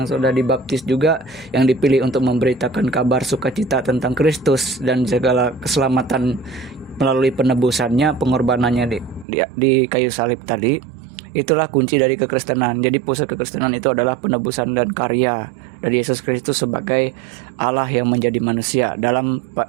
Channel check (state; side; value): drops out; left; at 9.2 s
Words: sudah dibaptis juga, yang dipilih untuk memberitakan kabar sukacita tentang Kristus dan segala keselamatan melalui penebusannya, pengorbanannya di kayu salib tadi. Itulah kunci dari kekristenan. Jadi pusat kekristenan itu adalah penebusan dan karya dari Yesus Kristus sebagai Allah yang menjadi manusia dalam